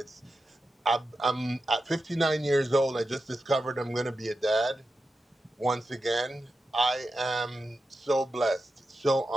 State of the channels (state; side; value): normal; both; correlation 0.90